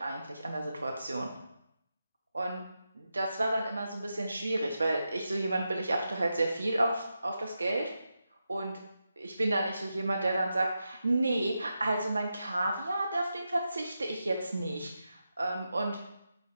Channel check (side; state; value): both; inverted; correlation -0.88